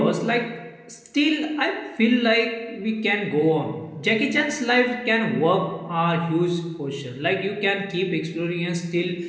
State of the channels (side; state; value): both; identical; correlation 1.00